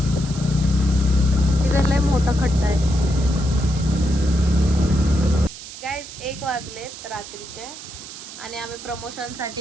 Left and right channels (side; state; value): right; noise; hiss, 13 dB below the sound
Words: तिथं लय मोठा खड्डा आहे. गाईज 1 वाजलेत रात्रीचे आणि आम्ही